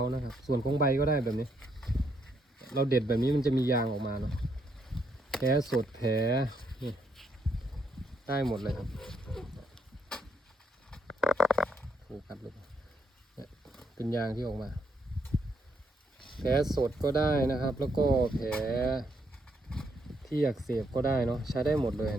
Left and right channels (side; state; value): both; normal; correlation 0.75